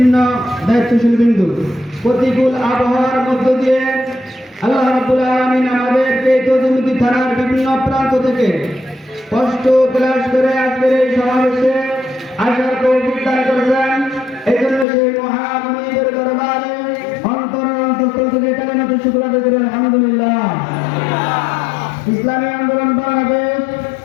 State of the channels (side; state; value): right; drops out; at 14.9 s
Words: দায়িত্বশীল বিন্দু প্রতিকূল আবহাওয়ার মধ্য দিয়ে আল্লাহ রাব্বুল আলামিন আমাদেরকে তজুমুদ্দিন থানার বিভিন্ন প্রান্ত থেকে কষ্ট ক্লাস করে আজকের এই সমাবেশে আসার তৌফিক দান করেছেন। এই জন্য সেই মহামনিবের দরবারে অন্তঃস্থল থেকে কালেমাতে শুকর আদায় করি আলহামদুলিল্লাহ। ইসলামী আন্দোলন বাংলাদেশ